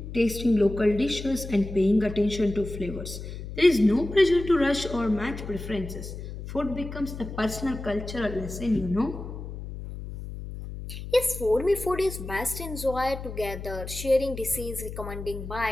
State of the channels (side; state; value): left; noise; hum, 9 dB below the sound